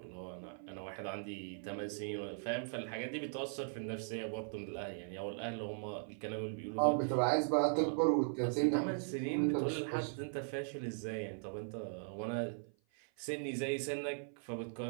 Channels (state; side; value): silent; left; 52 dB below the other